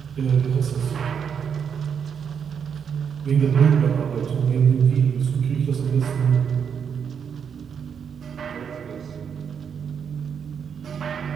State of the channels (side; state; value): left; quieter; 7.2 dB